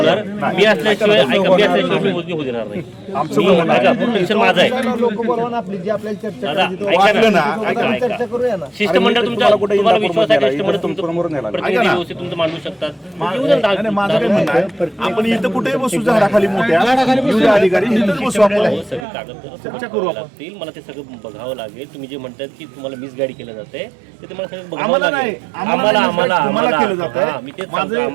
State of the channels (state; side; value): drops out; left; at 19.1 s